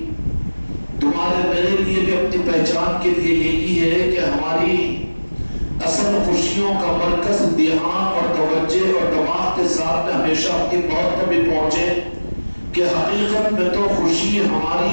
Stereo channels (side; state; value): both; inverted; correlation -1.00